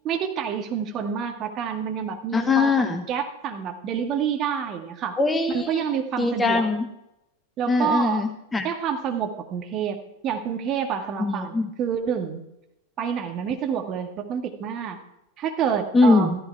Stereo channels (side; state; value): both; normal; correlation 0.57